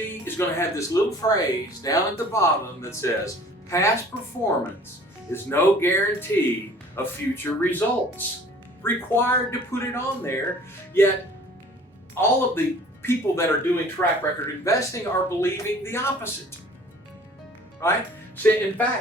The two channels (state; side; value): normal; both; correlation 0.50